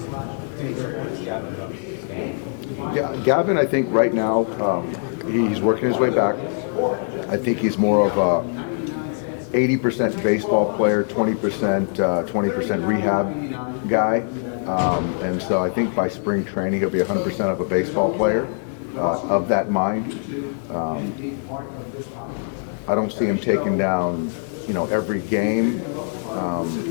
Yeah, Gavin, I think right now he's working his way back. I think he's more of a 80% baseball player, 20% rehab guy, and so I think by spring training he'll be 100% of a baseball player of that mind. I don't see him taking down, every game,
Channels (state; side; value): silent; right; 64 dB below the other